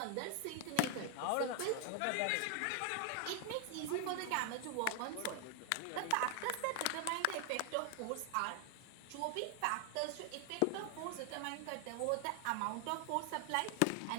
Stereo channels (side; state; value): both; different; correlation 0.00